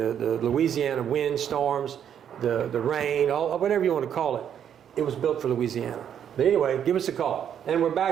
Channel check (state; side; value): quieter; left; 9.0 dB